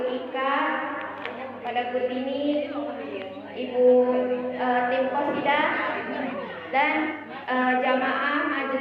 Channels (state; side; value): identical; both; correlation 1.00